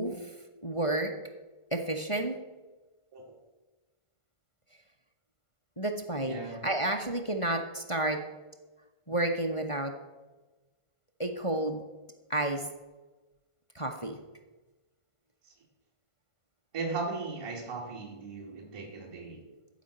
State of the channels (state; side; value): late; right; 1.5 ms